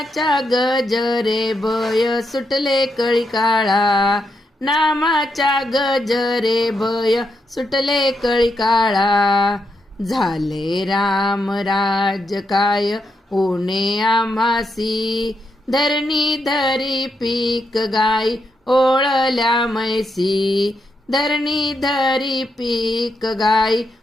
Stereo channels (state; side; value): normal; both; correlation 0.82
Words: गजरे भय सुटले कळी काळा, नामाच्या गजरे भय सुटले कळी काळा. झाले राम राज्य काय ऊणे आम्हासी, धरणी धरी पीक गाई ओळल्या मैसी. धरणी धरी पीक गाई